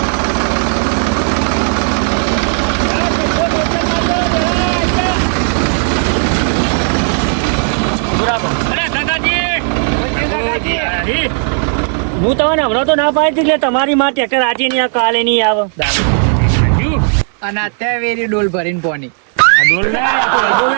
હું તમને હમણાં તો ના પાડી એટલે તમારી માં ટ્રેક્ટર આજે નહીં આવે કાલે નહીં આવે અને અત્યારે વેરી ડોલ ભરીને પોની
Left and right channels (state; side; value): silent; left; 59 dB below the other